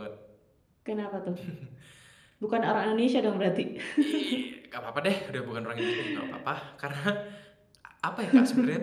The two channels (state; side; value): identical; both; correlation 1.00